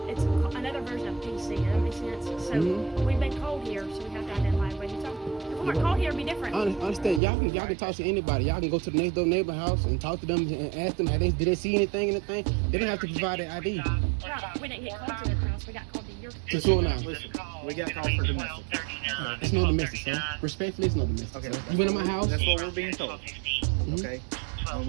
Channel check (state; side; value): drops out; left; at 7.2 s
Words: another version of PC. Does that make sense? So we've been called here, so we have to identify where you're talking. If we weren't called here, it'd be different. I understand. Y'all can talk to anybody. Y'all can go to the next door neighbor house and talk to them and ask them, did they see anything? They don't have to provide their ID. Right. We didn't get called to their house. We got called to your To 209. Listen, we got called for domestic. It's no domestic, sir. Respectfully, it's no domestic, Okay. sir. You went in my house? That's what we're being told. Okay. When